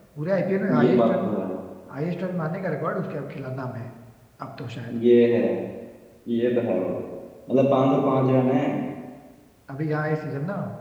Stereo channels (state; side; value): identical; both; correlation 1.00